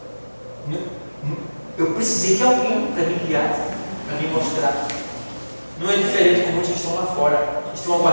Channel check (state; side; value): inverted; both; correlation -1.00